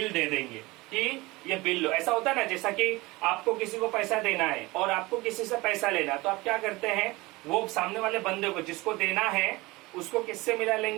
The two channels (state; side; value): quieter; left; 21.8 dB